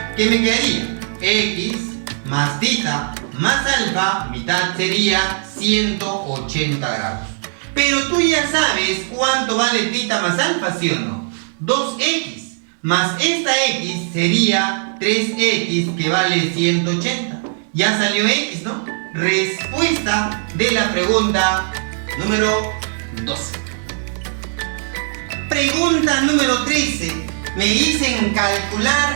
¿Qué me quedaría? X más θ más alfa, mitad sería 180 grados. Pero tú ya sabes cuánto vale θ más alfa, ¿sí o no? 2x más esta x sería 3x que vale 180. Ya salió x, ¿no? Respuesta de la pregunta número 12. Pregunta número 13. Me dicen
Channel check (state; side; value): silent; left; digital silence